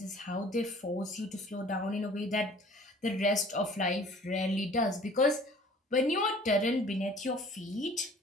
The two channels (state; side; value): normal; both; correlation 0.51